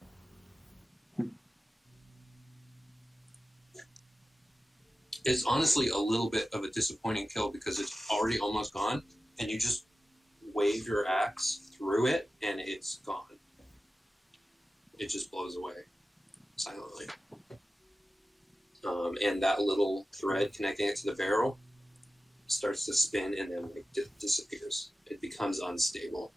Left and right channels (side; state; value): both; normal; correlation 0.95